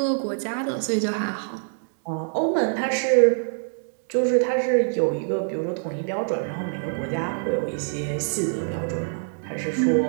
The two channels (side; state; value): left; silent; digital silence